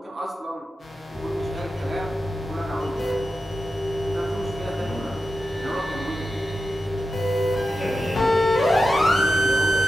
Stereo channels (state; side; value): normal; both; correlation 0.91